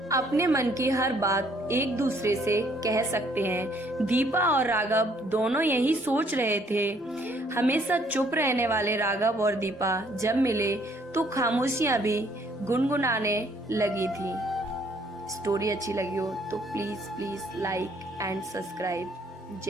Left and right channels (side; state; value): both; normal; correlation 0.64